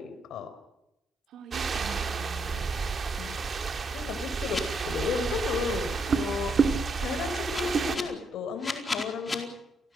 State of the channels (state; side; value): normal; both; correlation 0.76